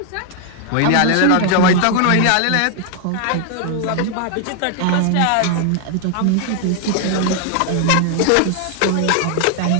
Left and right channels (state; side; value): different; both; correlation 0.00